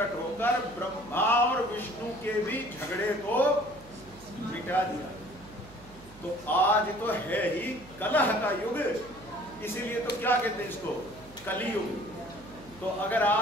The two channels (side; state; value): right; noise; hum, 21 dB below the sound